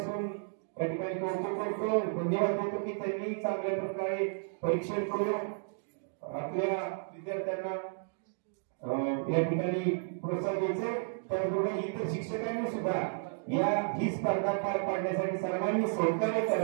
या ठिकाणी कौतुक करतो, धन्यवाद देतो की त्यांनी चांगल्या प्रकारे परीक्षण करून आपल्या विद्यार्थ्यांना या ठिकाणी प्रोत्साहन द्यायचे। त्याचबरोबर इतर शिक्षकांनी सुद्धा ही स्पर्धा पार पाडण्यासाठी सर्वांनी सहकार्य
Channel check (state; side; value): silent; left; digital silence